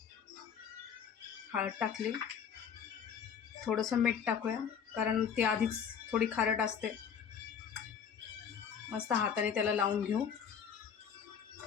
हळद टाकली, थोडंसं मीठ टाकूया कारण ती आधीच थोडी खारट असते. मस्त हाताने त्याला लावून घेऊ.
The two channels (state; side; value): quieter; right; 7.5 dB